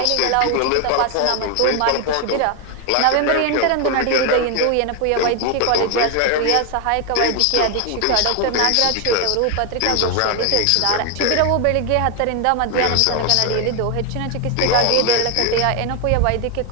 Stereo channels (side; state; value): both; different; correlation 0.01